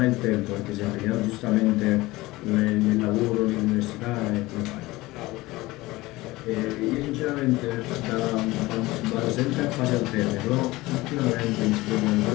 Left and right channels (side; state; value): right; quieter; 19.7 dB